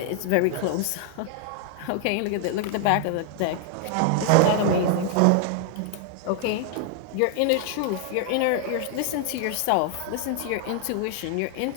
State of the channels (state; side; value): different; both; correlation 0.00